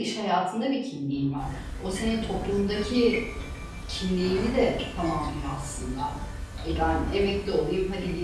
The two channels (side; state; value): both; identical; correlation 1.00